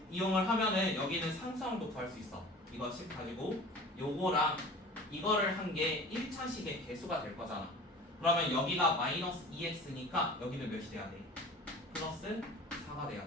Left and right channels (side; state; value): both; normal; correlation 0.41